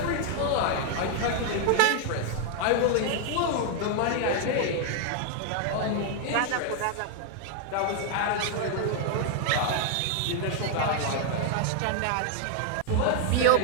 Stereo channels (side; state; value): both; different; correlation 0.00